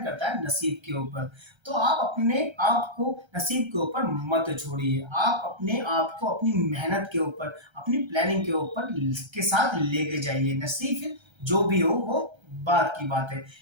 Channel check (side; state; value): left; late; 1.3 ms